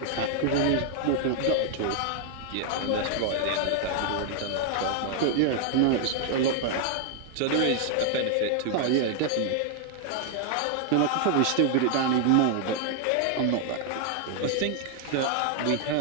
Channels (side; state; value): both; different; correlation 0.00